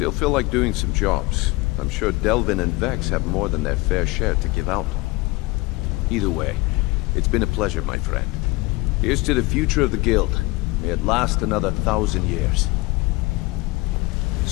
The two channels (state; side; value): quieter; right; 22.8 dB